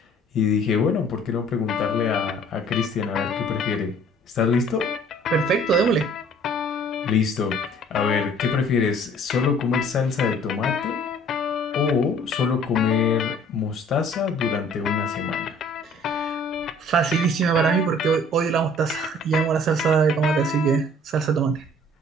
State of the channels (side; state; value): both; normal; correlation 0.54